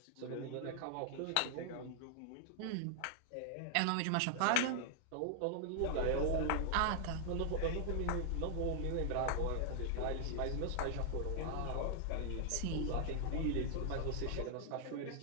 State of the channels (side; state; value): both; different; correlation 0.00